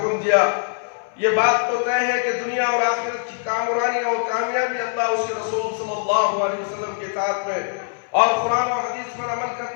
دیا۔ یہ بات تو طے ہے کہ دنیا اور آخرت کی کامرانی اور کامیابی اللہ اس کے رسول صلی اللہ علیہ وسلم کی اطاعت میں اور قرآن و حدیث پر عمل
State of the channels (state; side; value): silent; right; 61 dB below the other